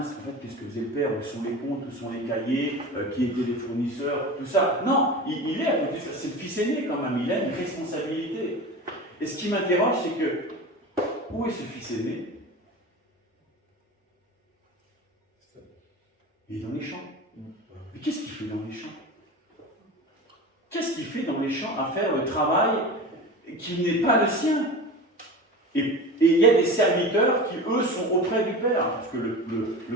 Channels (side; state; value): both; normal; correlation 0.31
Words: en fait, qu'est-ce que faisait le père, où sont les comptes, où sont les cahiers, qui étaient les fournisseurs, tout ça. Non, il est à côté de ça. C'est le fils aîné quand même, il a une responsabilité. Et ce qui m'interroge, c'est que, où est ce fils aîné? Il est dans les champs. Mais qu'est-ce qu'il fait dans les champs? Qu'est-ce qu'il fait dans les champs à faire le travail qui n'est pas le sien? Et il y a des serviteurs qui, eux, sont auprès du Père. Parce que